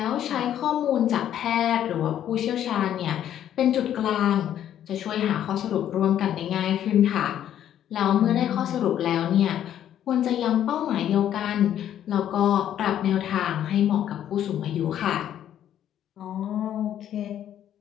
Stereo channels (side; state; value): right; quieter; 10.7 dB